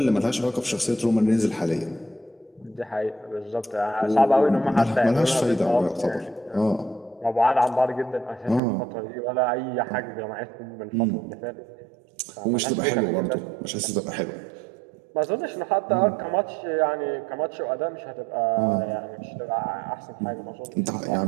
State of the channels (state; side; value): drops out; left; at 8.6 s